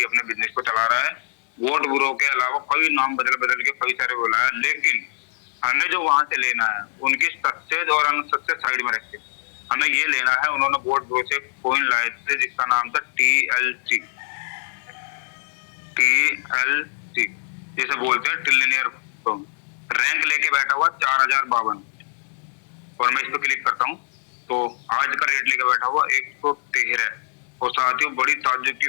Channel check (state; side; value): silent; right; 61 dB below the other